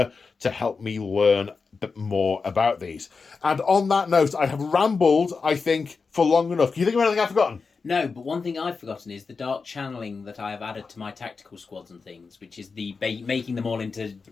to help me learn a bit more about these. And on that note, I have rambled, I think, for long enough. Can you think of anything I've forgotten? No, but one thing I've forgotten is the dark channeling that I have added to my tactical squads and things, which is the making them all into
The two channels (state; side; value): quieter; right; 4.8 dB